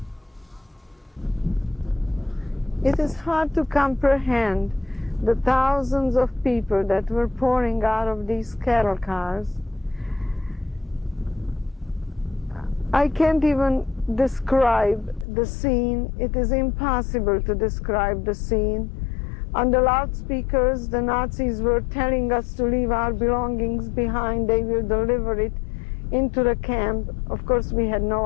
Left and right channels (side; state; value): right; drops out; at 15.2 s